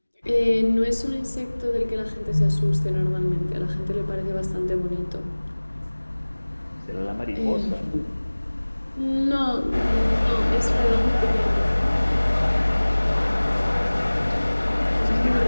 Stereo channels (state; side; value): inverted; both; correlation -1.00